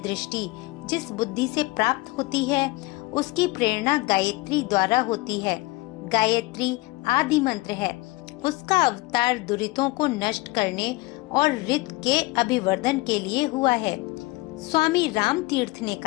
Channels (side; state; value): right; quieter; 21.6 dB